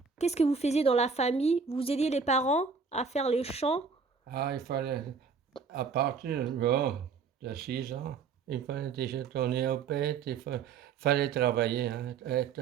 qu'est-ce que vous faisiez dans la famille? Vous aidiez les parents à faire les champs? Ah, il fallait, à partir de 6 ans, il fallait déjà tourner aux bêtes, fallait travailler, hein,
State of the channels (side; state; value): left; quieter; 5.5 dB